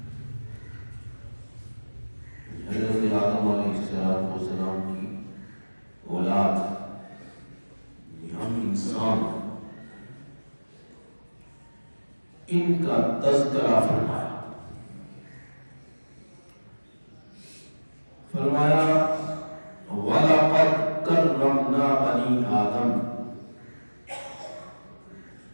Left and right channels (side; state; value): both; inverted; correlation -1.00